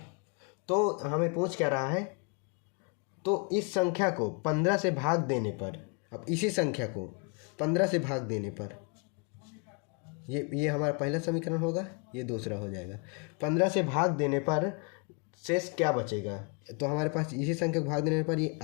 तो हमें पूछ क्या रहा है, तो इस संख्या को 15 से भाग देने पर, अब इसी संख्या को 15 से भाग देने पर, ये हमारा पहला समीकरण होगा, ये दूसरा हो जाएगा। 15 से भाग देने पर शेष क्या बचेगा, तो हमारे पास इसी संख्या को भाग देने पर ये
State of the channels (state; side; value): quieter; right; 35.7 dB